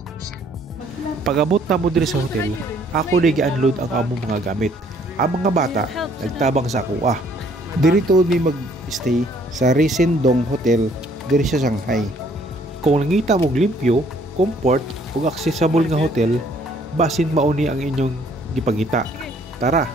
Pag-abot na mo diri sa hotel, ako nag-unload ang among mga gamit. Ang mga bata nagtabang sa kuha. Diri tuod mi mag-stay sa Resendong Hotel diri sa Shanghai. Kung nangita mo limpyo, comfort ug accessible nga hotel, basin mauni ang inyong gipangita. Tara,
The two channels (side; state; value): both; normal; correlation 0.62